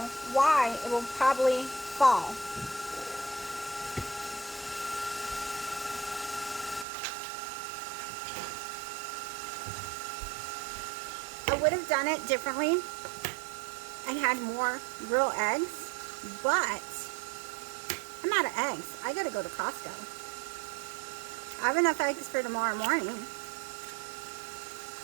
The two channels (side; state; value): left; drops out; at 6.9 s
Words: why it will probably fall. I would have done it differently and had more real eggs, but I'm out of eggs. I gotta go to Costco. I have enough eggs for tomorrow morning.